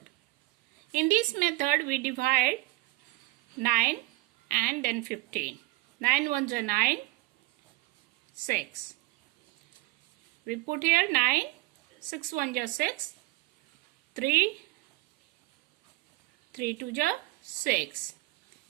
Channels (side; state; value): left; quieter; 19.9 dB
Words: In this method we divide 9 and then 15. 9 1 is 9, 6. We put here 9, 6 1 is 6, 3, 3 2 is 6.